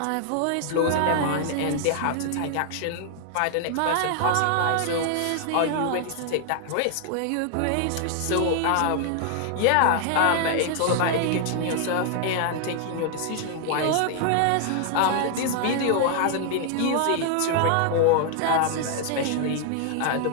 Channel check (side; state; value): both; different; correlation 0.00